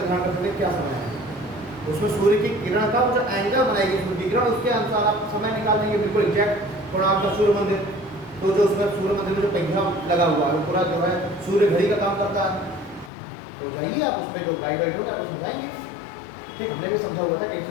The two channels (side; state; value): right; drops out; at 13.1 s